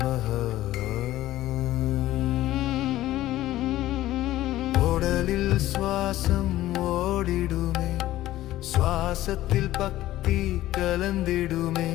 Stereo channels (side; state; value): right; quieter; 15.0 dB